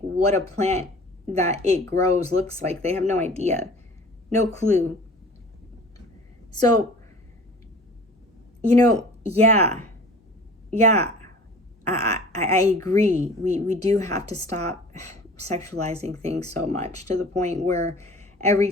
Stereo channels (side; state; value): both; normal; correlation 0.44